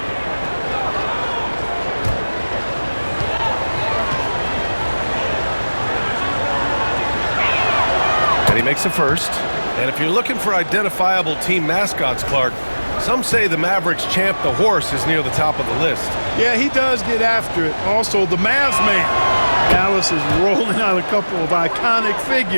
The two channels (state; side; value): inverted; both; correlation -1.00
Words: And he makes a first. And if you're looking for identifiable team mascots, Clark, some say the Mavericks champ, the horse, is near the top of the list. Yeah, he does get after it. Also, the Mavs man. Dallas is rolling out a couple of iconic